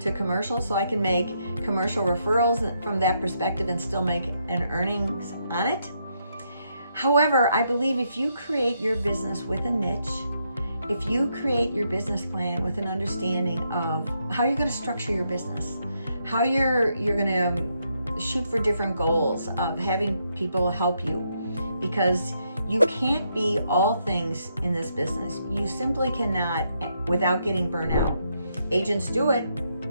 commercial so I can make commercial referrals from that perspective and still make an earnings on it. However, I believe if you create your business with a niche, if you create your business plan with an understanding of how you're going to structure your business, how you're going to shoot for different goals of having people help you, because you can't be all things in this business. You simply cannot without getting burnt out. Agents do it.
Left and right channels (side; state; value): both; inverted; correlation -0.78